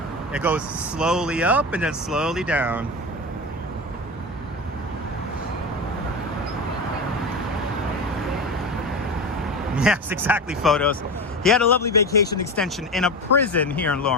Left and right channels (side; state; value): both; normal; correlation 0.24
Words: It goes slowly up and then slowly down. Yes, exactly, photos. He had a lovely vacation extension in a prison here in